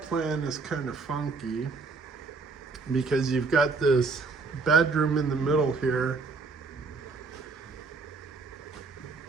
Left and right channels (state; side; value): quieter; left; 4.3 dB